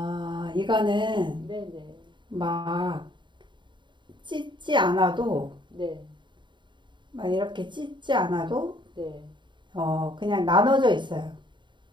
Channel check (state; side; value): late; left; 0.23 ms